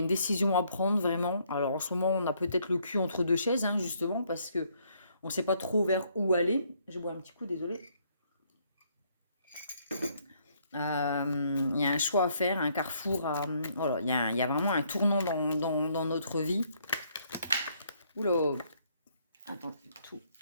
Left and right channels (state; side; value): inverted; both; correlation -0.69